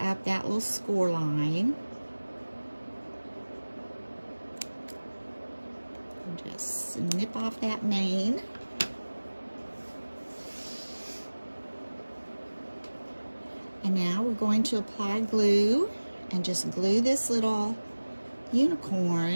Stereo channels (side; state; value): both; inverted; correlation -1.00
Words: up that little score line. And just snip off that mane. And now we're going to apply glue and just glue this little